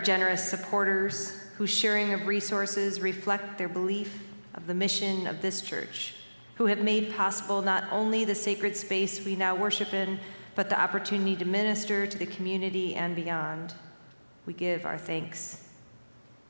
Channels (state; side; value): inverted; both; correlation -1.00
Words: generous supporters whose sharing of resources reflect their belief of the mission of this church, who have made possible not only the sacred space we now worship in, but the opportunity to minister to the community and beyond. We give our thanks.